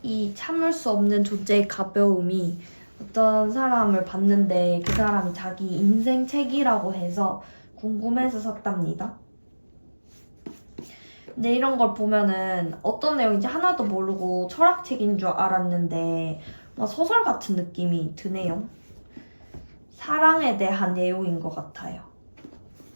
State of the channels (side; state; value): both; inverted; correlation -1.00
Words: 이 참을 수 없는 존재의 가벼움이 어떤 사람을 봤는데 그 사람이 자기 인생 책이라고 해서 궁금해서 샀답니다. 근데 이런 걸 보면은 어떤 내용인지 하나도 모르고 철학책인 줄 알았는데 막 소설 같은 느낌이 드네요. 사랑에 대한 내용인 것 같아요.